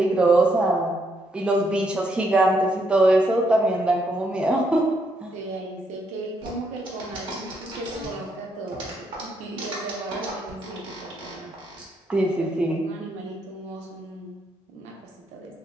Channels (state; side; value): normal; both; correlation 0.75